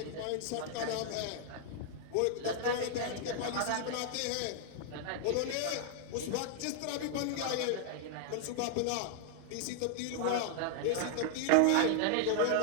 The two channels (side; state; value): both; different; correlation 0.00